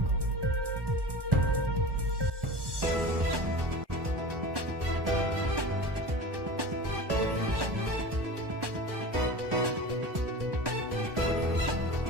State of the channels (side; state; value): left; late; 1.2 ms